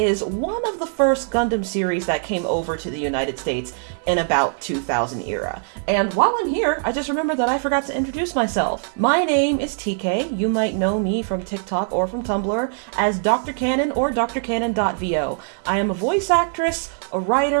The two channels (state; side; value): silent; left; 62 dB below the other